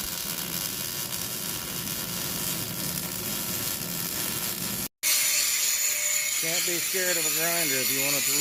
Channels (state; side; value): identical; both; correlation 1.00